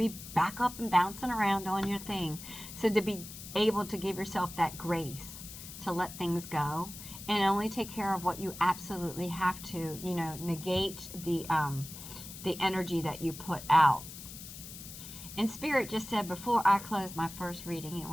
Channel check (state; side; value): noise; left; hiss, 12 dB below the sound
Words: back up and bouncing around on your thing. So to be able to give yourself that grace to let things go and only take care of what you absolutely have to, negate the energy that you put out. And Spirit just said before I close my first reading, and